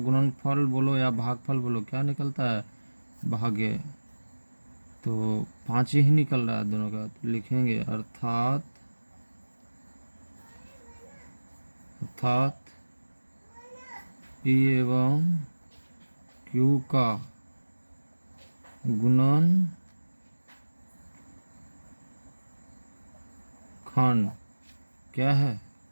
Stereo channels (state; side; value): inverted; both; correlation -1.00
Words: बोलो या भागफल बोलो, क्या निकलता है, भाग्य, तो 5 ही निकल रहा है दोनों का। तो लिखेंगे अर्थात p एवं q का गुणनखंड क्या है,